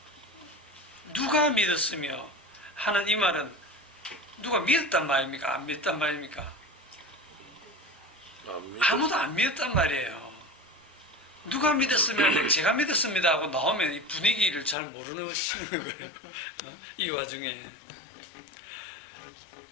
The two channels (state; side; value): drops out; right; at 14.8 s